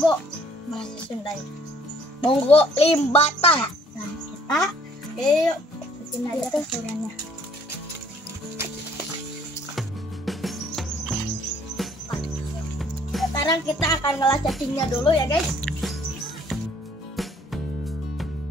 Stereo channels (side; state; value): both; normal; correlation 0.59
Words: bahasa Sundanya. Bogo limbata. Nah, kita yuk bikin aja teksturnya. Sekarang kita akan ngolah cacingnya dulu ya guys.